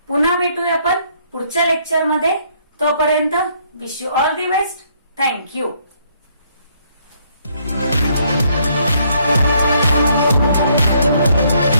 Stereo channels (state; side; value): inverted; both; correlation -0.68